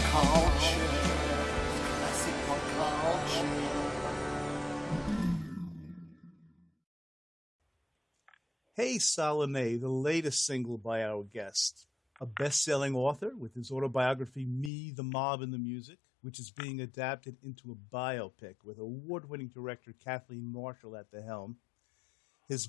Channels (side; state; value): right; drops out; at 14.7 s